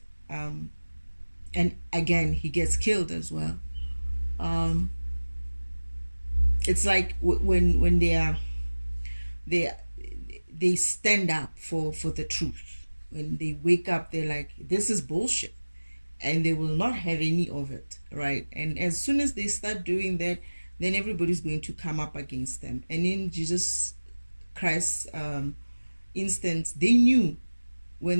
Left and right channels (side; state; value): both; inverted; correlation -1.00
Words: And again, he gets killed as well. It's like when they stand up for the truth. When they wake up, they're like, this is bullshit, and they will not have any of it, right? And as soon as they start doing that, then everybody's going to come up against them. And in Jesus Christ's instance, they knew, when